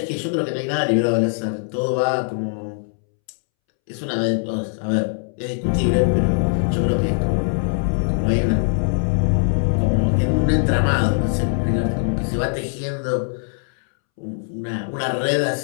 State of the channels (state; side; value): silent; right; 65 dB below the other